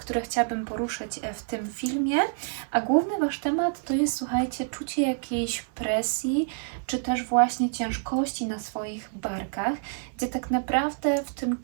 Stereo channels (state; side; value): silent; left; 59 dB below the other